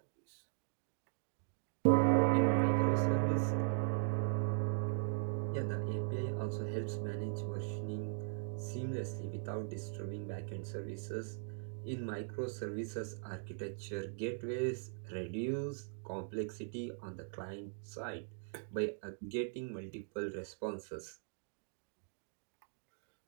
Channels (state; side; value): silent; left; digital silence